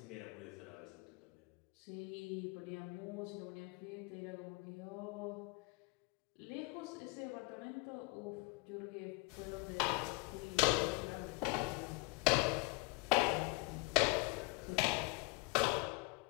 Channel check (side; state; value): right; quieter; 26.0 dB